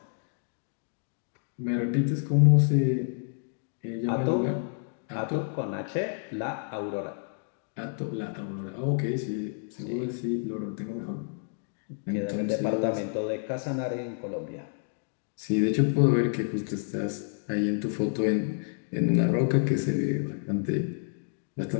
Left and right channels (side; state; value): right; silent; digital silence